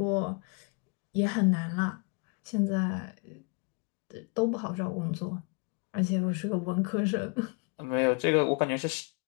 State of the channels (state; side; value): quieter; right; 33.9 dB